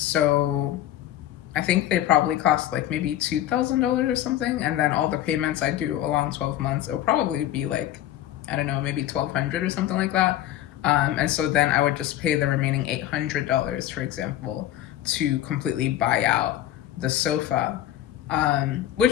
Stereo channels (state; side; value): quieter; right; 12.7 dB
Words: I think they probably cost like maybe $2,000 or something, and then all the payments I do along 12 months, it'll probably be like, I don't know, maybe 1,200 or something like that. And so then I would just pay the remaining $800, for example, to completely buy out the sofa,